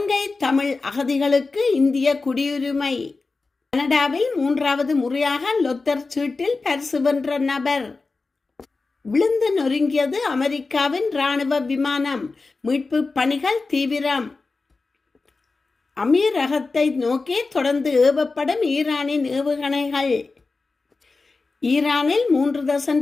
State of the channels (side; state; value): right; quieter; 3.9 dB